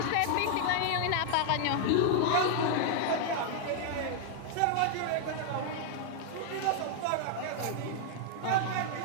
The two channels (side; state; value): both; different; correlation 0.00